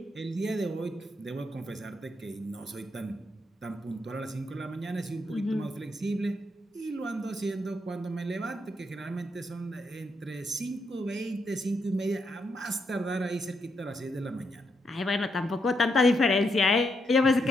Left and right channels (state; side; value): normal; both; correlation 0.79